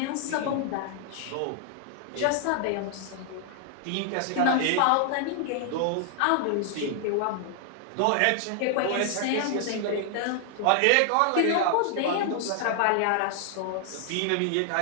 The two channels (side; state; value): both; different; correlation 0.00